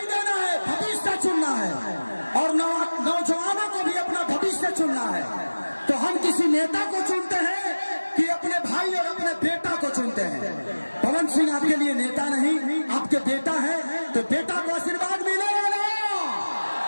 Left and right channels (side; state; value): both; inverted; correlation -1.00